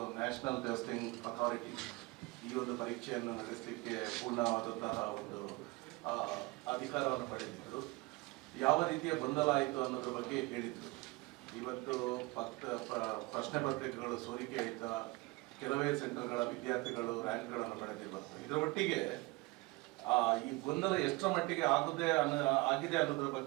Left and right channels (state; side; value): quieter; left; 23.4 dB